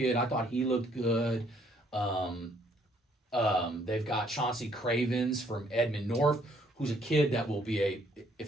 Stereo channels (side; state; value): both; normal; correlation 0.65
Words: I thought he looked good. They've got Chauncey Cravens from Edmond North, who's a kid that will be if